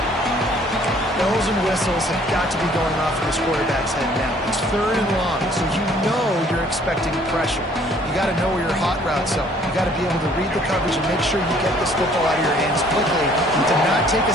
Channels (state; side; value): normal; both; correlation 0.59